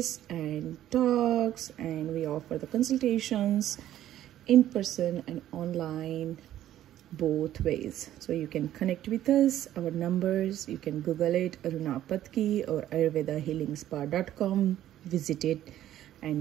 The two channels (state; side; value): quieter; left; 12.5 dB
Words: and talks, and we offer the consultations in person and online, both ways. So you can connect with us. Our numbers, you can Google it, Aruna Patki or ayurvedahealingspa.com. Visit it